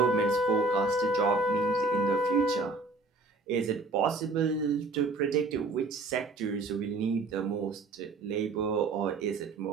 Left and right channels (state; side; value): quieter; left; 3.4 dB